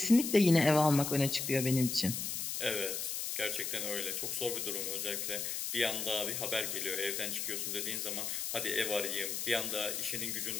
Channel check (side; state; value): left; noise; hiss, 3 dB below the sound